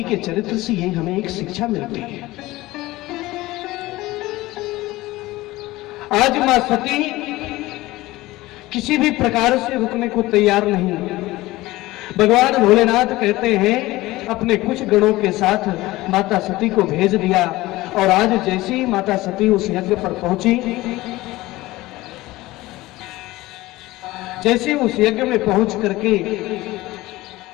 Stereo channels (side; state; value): right; quieter; 18.6 dB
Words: के चरित्र से ये हमें एक शिक्षा मिलती है। आज मां सती किसी भी प्रकार से रुकने को तैयार नहीं। भगवान भोलेनाथ कहते हैं अपने कुछ गणों के साथ माता सती को भेज दिया, और आज जैसे ही माता सती उस यज्ञ पर पहुंची, जैसे उस यज्ञ में पहुंच करके